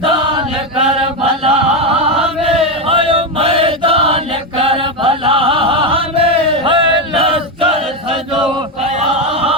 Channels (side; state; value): both; normal; correlation 0.10